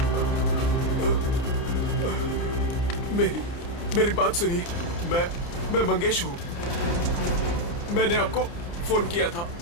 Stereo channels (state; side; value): late; right; 29 ms